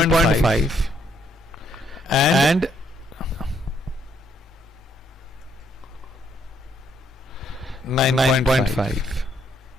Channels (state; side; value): normal; both; correlation 0.71